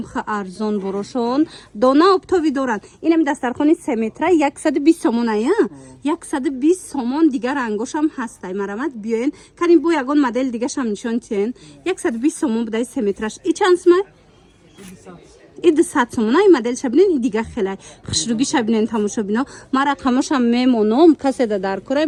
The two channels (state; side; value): identical; both; correlation 1.00